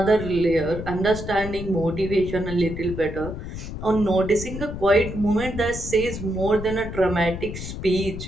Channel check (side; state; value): left; noise; rumble, 8 dB below the sound